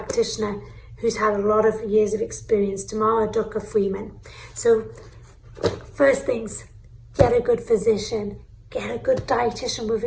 who's had a lot of years of experience, Tamara Ducker Freeman. So first things, get a good physician, get a good dietitian with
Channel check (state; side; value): identical; both; correlation 1.00